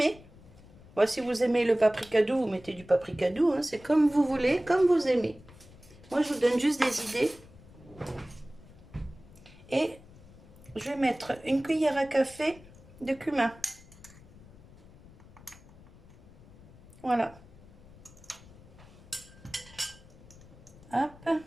Bon, si vous aimez le paprika doux, vous mettez du paprika doux, hein, c'est comme vous voulez, comme vous aimez. Moi, je vous donne juste des idées. Et je vais mettre une cuillère à café de cumin. Voilà. Hop.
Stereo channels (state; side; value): noise; left; rumble, 22 dB below the sound